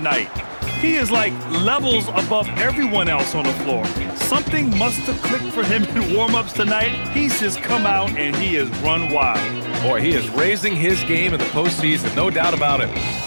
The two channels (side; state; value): both; inverted; correlation -1.00